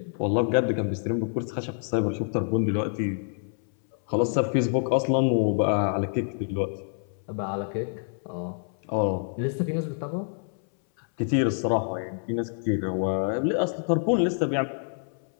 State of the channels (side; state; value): right; silent; 60 dB below the other